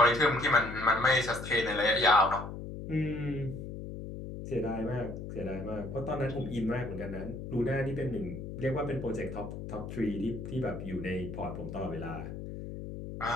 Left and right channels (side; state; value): left; noise; hum, 8 dB below the sound